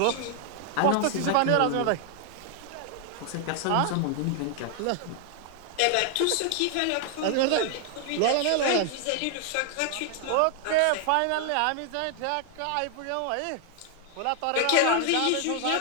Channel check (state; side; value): different; both; correlation 0.00